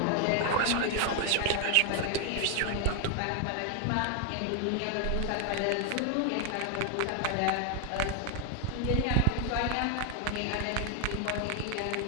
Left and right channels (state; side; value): different; both; correlation 0.01